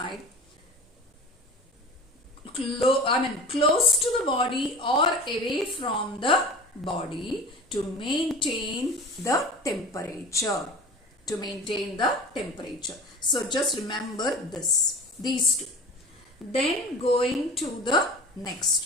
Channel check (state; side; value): normal; both; correlation 0.36